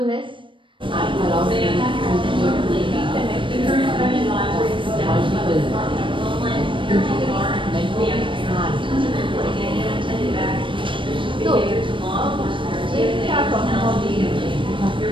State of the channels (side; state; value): left; late; 0.24 ms